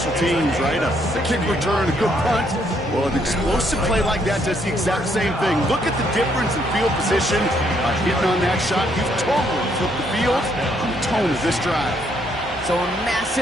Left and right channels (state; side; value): normal; both; correlation 0.71